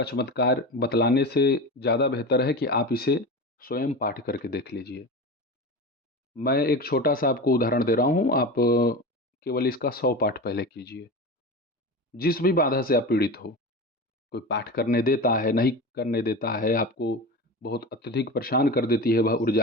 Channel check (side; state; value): both; normal; correlation 0.27